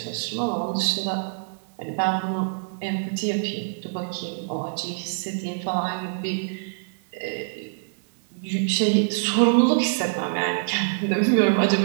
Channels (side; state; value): left; silent; digital silence